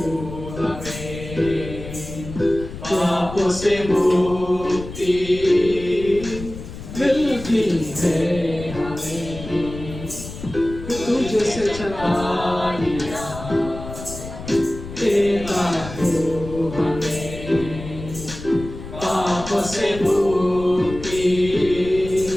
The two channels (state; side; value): noise; left; rumble, 11 dB below the sound